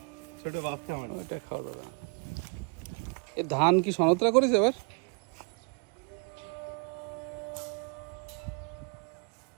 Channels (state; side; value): quieter; left; 36.0 dB